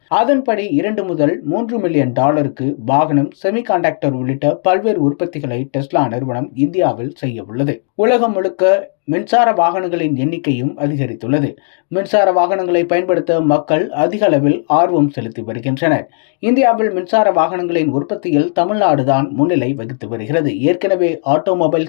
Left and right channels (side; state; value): right; silent; digital silence